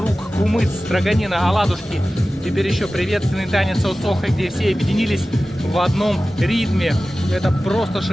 кумыц, строганина, оладушки. Теперь еще приветственный танец Осоха, где все объединились в одном ритме. Это просто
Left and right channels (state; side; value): normal; both; correlation 0.96